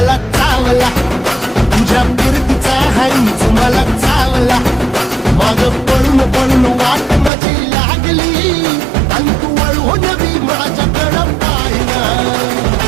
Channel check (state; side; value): drops out; left; at 7.3 s